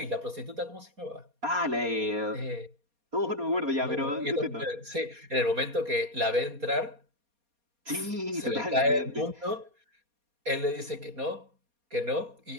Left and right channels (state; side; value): late; left; 4.2 ms